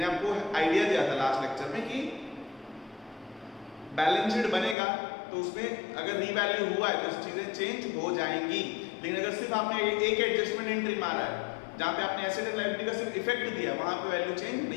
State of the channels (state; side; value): drops out; right; at 4.8 s